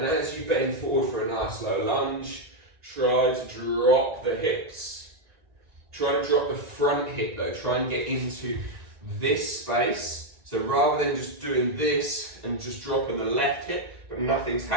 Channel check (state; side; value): late; left; 1.7 ms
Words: as you bend forward for a nice low lunge, try to drop the hips. Try and drop the front hip though. Try and get into this space. So rather than just doing this and just dropping the left hip, but nothing's